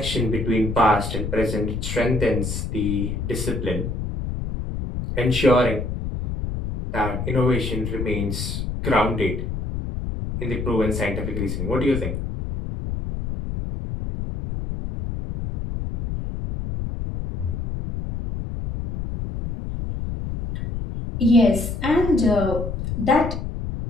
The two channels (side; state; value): left; noise; rumble, 4 dB below the sound